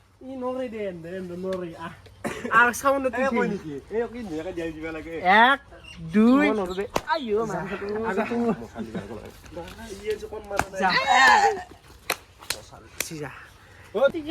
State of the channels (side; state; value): both; identical; correlation 1.00